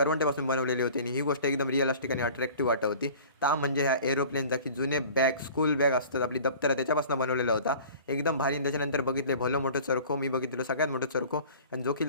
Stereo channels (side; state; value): both; inverted; correlation -0.44